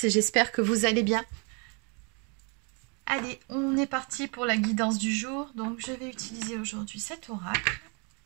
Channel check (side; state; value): left; quieter; 34.4 dB